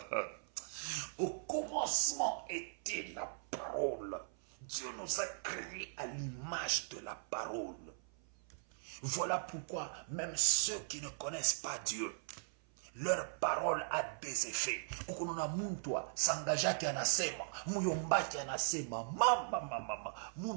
Au commencement était la parole. Dieu nous a créés à l'image de la parole. Voilà pourquoi même ceux qui ne connaissent pas Dieu, leur parole a des effets. Ukununa muntu sangajaki anasema, muyombaki anasema, mama,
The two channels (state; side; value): silent; left; 52 dB below the other